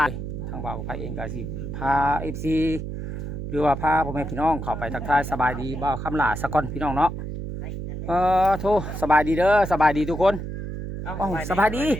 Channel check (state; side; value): noise; right; hum, 6 dB below the sound